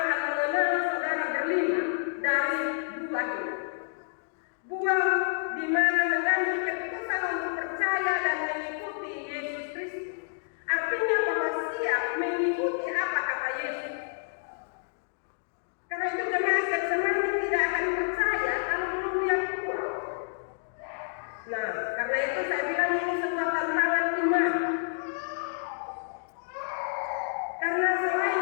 mengenal saudara berlima dari buah ini. Buah di mana mengambil keputusan untuk percaya dan mengikuti Yesus Kristus. Artinya bahwa siap mengikuti apa kata Yesus. Karena itu jemaat yang semuanya tidak akan percaya kalau belum lihat buah. Nah, karena itu saya bilang ini sebuah tantangan iman. Karena selain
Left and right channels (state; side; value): silent; right; digital silence